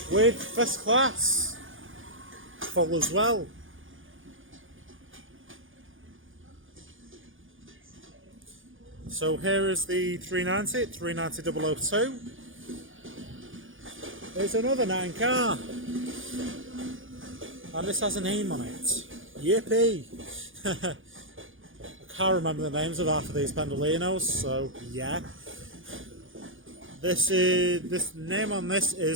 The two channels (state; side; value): late; left; 0.58 ms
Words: With first class full as well. So here is the 390, 390 002. There's another 9 car. And this has a name on it. Yippee! I can't remember the names of half of these Pendolinos, so yeah. This name on this